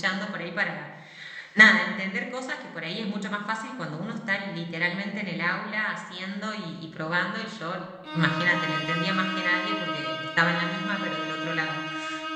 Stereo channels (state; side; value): identical; both; correlation 1.00